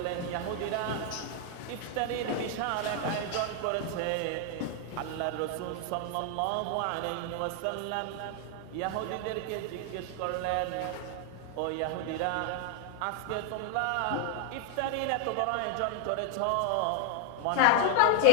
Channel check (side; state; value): both; different; correlation 0.01